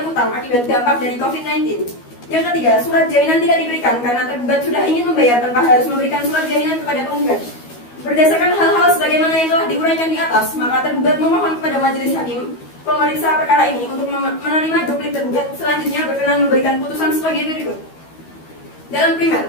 utang akibat dampak dari COVID-19. Yang ketiga, surat jaminan tidak diberikan karena tergugat sudah ingin membayar tanpa harus memberikan surat jaminan kepada penggugat. Berdasarkan hal-hal sebagaimana yang telah diuraikan di atas, maka tergugat memohon kepada majelis hakim pemeriksa perkara ini untuk menerima duplik tergugat selanjutnya berkenan memberikan putusan sebagai berikut. Dalam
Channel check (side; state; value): right; late; 12 ms